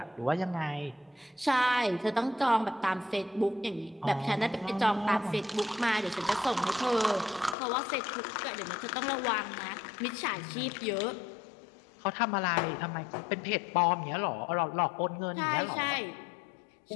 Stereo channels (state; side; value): drops out; right; at 7.6 s